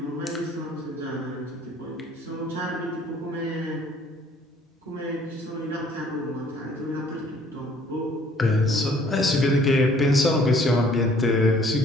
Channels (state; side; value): normal; both; correlation 0.58